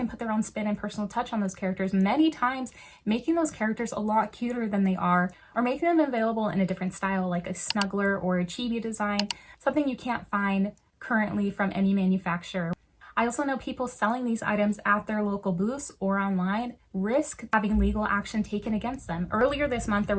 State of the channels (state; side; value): identical; both; correlation 1.00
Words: put their own spin and personal touch on those characters, many times making those characters a lot cuter than they are, or making them available in a different style like a snuggler or a chibi design, something you can't find currently from any manufacturer. I also know people selling these items at their local booths or online risk having legal action taken against them. Earlier this month, there